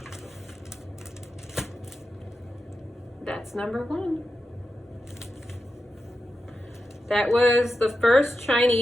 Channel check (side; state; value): both; normal; correlation 0.89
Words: That's number 1. That was the first